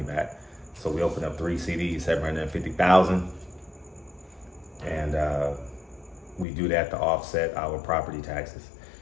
back. So we opened up 3 CDs, 750,000, and we do that to offset our property taxes.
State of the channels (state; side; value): drops out; right; at 6.5 s